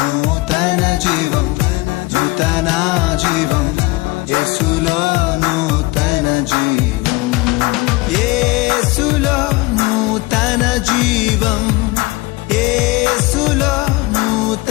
జీవం, నూతన జీవం, యేసులో నూతన జీవం, యేసులో నూతన జీవం, యేసులో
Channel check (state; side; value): quieter; right; 22.4 dB